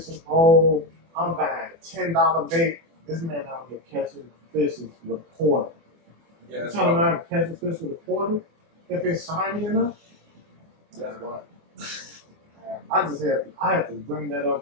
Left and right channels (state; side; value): late; left; 24 ms